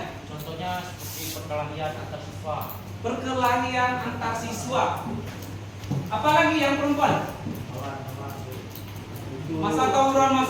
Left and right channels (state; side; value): identical; both; correlation 1.00